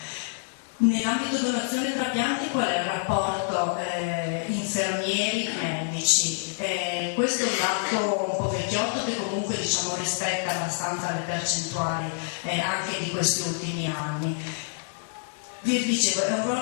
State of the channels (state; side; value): silent; right; digital silence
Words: Nell'ambito donazione e trapianti qual è il rapporto infermieri-medici? Questo è un dato un po' vecchiotto che comunque diciamo rispetta abbastanza le percentuali anche di questi ultimi anni. Vi dicevo, è un